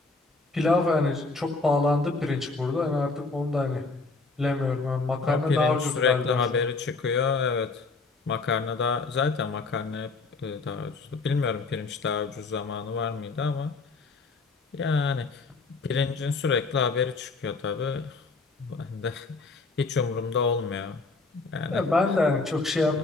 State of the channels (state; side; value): quieter; right; 3.8 dB